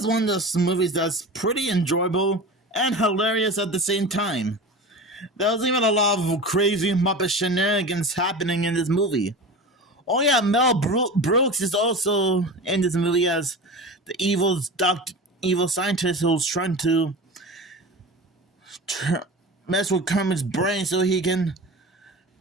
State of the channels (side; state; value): both; normal; correlation 0.31